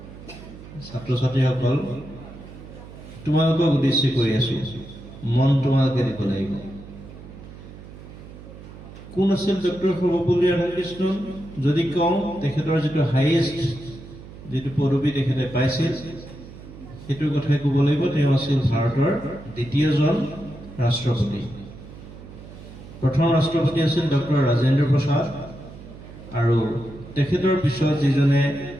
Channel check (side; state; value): right; noise; hum, 16 dB below the sound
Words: ছাত্ৰ ছাত্ৰীসকল, তোমালোকক উদ্দেশ্য কৰি আছো, মন তোমালোকে দিব লাগিব। কোন আছিল ডক্টৰ সৰ্বপল্লী ৰাধাকৃষ্ণন? যদি কওঁ, তেখেতৰ যিটো হাইয়েষ্ট যিটো পদবী তেখেতে পাইছিল, সেইটোৰ কথাই ক'ব লাগিব। তেওঁ আছিল ভাৰতৰ দ্বিতীয়জন ৰাষ্ট্ৰপতি। প্ৰথম ৰাষ্ট্ৰপতি আছিল ডক্টৰ ৰাজেন্দ্ৰ প্ৰসাদ, আৰু তেখেতৰ পিছত যিজনে